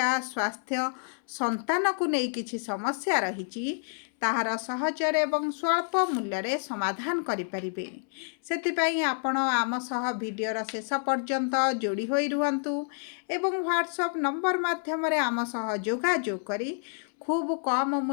स्वास्थ्य संतान को नहीं किछि समस्या रहिछि ताहार सहजर एवं स्वल्प मूल्य रे समाधान करि परिबे सेतिपई आपण आम सह वीडियोर शेष पर्यंत जोड़ी होई रुहंतु एवं व्हाट्सएप नंबर माध्यम रे आम सह जोगाजोग करी खूब कम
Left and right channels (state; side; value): silent; right; 59 dB below the other